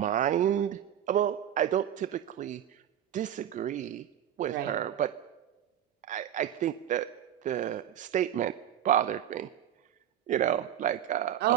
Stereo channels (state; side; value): quieter; left; 10.5 dB